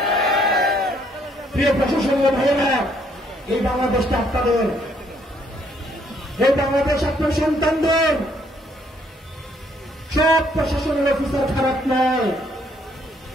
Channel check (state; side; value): normal; both; correlation 0.67